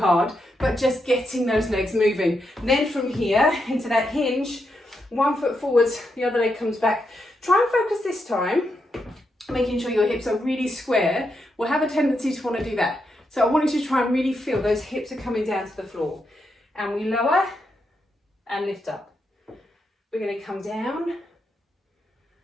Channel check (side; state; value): both; normal; correlation 0.83